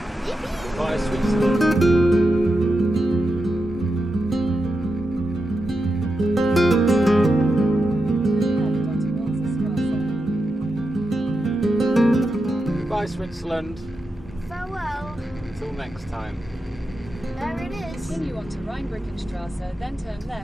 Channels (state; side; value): normal; both; correlation 0.88